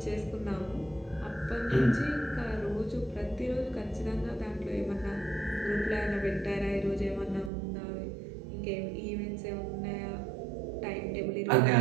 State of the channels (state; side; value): drops out; left; at 7.5 s